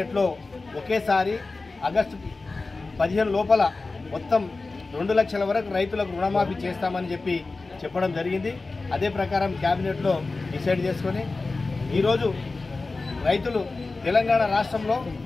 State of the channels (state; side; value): quieter; right; 3.6 dB